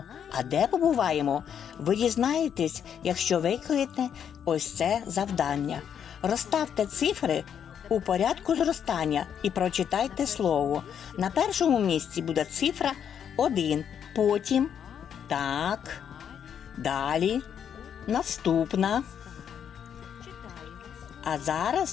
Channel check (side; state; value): right; quieter; 8.4 dB